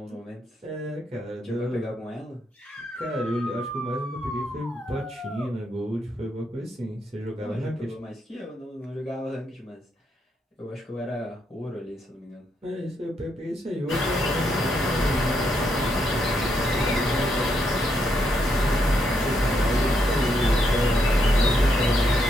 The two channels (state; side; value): normal; both; correlation 0.78